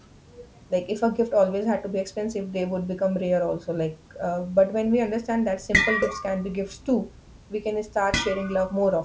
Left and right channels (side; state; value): both; identical; correlation 1.00